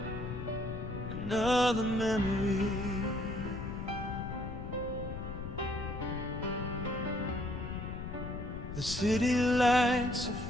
another memory. The city lights are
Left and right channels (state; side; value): noise; left; rumble, 7 dB below the sound